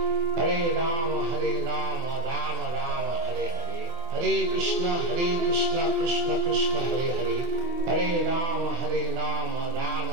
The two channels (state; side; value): late; left; 24 ms